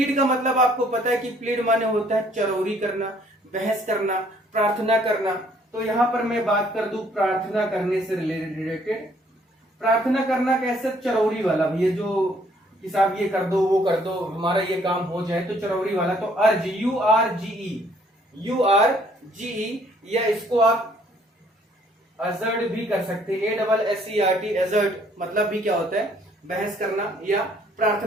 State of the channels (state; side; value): normal; both; correlation 0.63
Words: का मतलब आपको पता है कि प्लीड माने होता है चरौरी करना, बहस करना, प्रार्थना करना। तो यहां पर मैं बात कर दूं प्रार्थना करने से रिलेटेड। प्रार्थना करना कैसे? चरौरी वाला भैया, जो कि साहब ये कर दो, वो कर दो, हमारा ये काम हो जाए, तो चरौरी वाला। तो अर्ज, URGE, या इसको आप अजर्ड भी कर सकते हैं, ASSERT, अजर्ड मतलब भी क्या होता है? बहस करना या